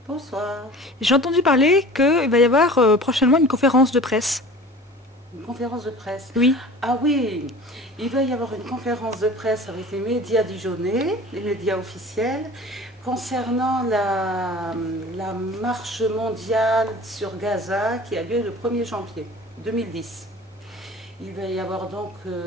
Bonsoir. j'ai entendu parler qu'il va y avoir prochainement une conférence de presse. Une conférence de presse. Oui. Ah oui, il va y avoir une conférence de presse avec les médias dijonnais, les médias officiels, concernant la marche mondiale sur Gaza qui a lieu le 1er janvier 2010. Il va y avoir donc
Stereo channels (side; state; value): both; normal; correlation 0.42